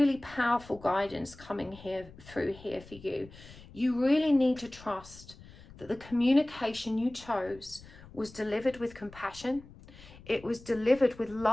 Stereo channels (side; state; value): left; noise; rumble, 20 dB below the sound